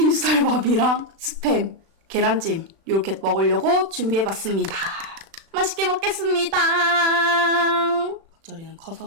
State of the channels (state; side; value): late; left; 36 ms